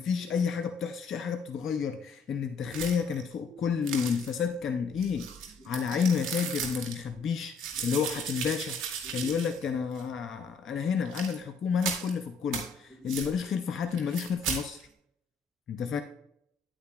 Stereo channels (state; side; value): quieter; right; 4.6 dB